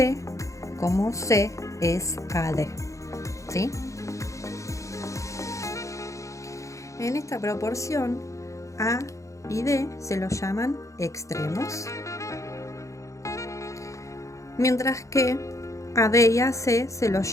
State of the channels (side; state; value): right; late; 0.15 ms